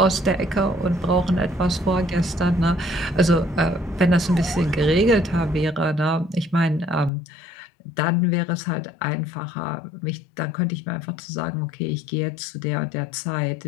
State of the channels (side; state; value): right; drops out; at 7.1 s